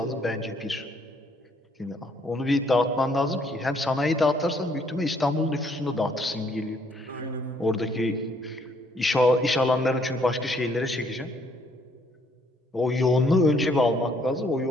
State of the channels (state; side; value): normal; both; correlation 0.66